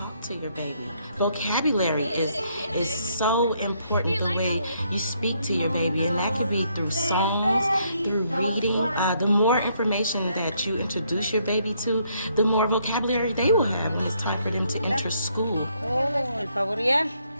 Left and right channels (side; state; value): both; inverted; correlation -0.72